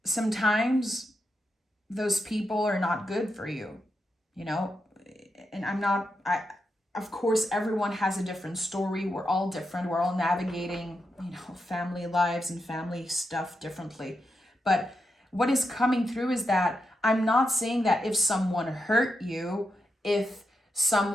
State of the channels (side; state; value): both; normal; correlation 0.85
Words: sometimes those people are not good for you, and of course, everyone has a different story. We're all different. We're all navigating, family lives and family stuff differently. But what is coming through is that I'm not saying that if someone hurt you, if